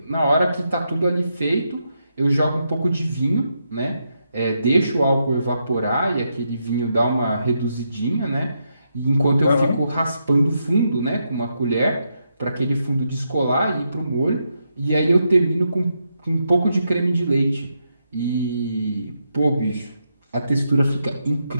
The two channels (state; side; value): inverted; both; correlation -0.82